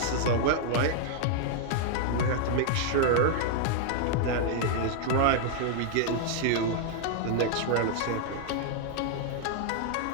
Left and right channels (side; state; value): both; different; correlation 0.00